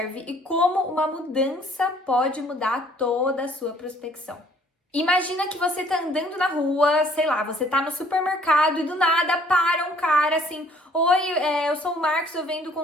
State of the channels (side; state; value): both; normal; correlation 0.59